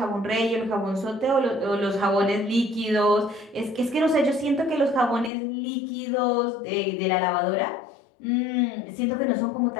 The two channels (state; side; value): drops out; right; at 5.3 s